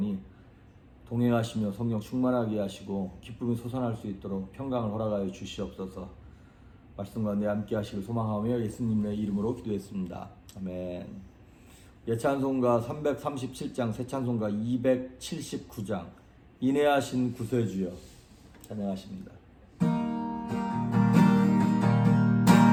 동행하시며 성령 충만하게 하시고 기쁨이 솟아날 수 있도록 평강을 허락하여 주시옵소서. 말씀 가운데 함께 하시길 소망하며 예수님의 이름으로 기도했습니다. 아멘. 예찬송가 337장, 새찬송가 279장, 인내하신 구세주여 찬양하십니다.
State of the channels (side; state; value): both; identical; correlation 1.00